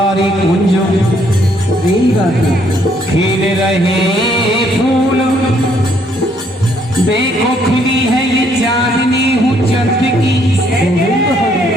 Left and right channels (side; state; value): both; normal; correlation 0.68